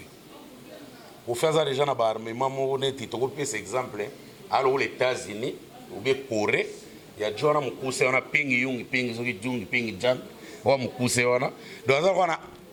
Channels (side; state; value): both; identical; correlation 1.00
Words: aza déjà na baarmement moko neti tokopesa exemple alo les États-Unis ou bien Corée ya jona mukuse wana pingi yungi pingi soki jungi pingi jang wa mukuse wana do aza wana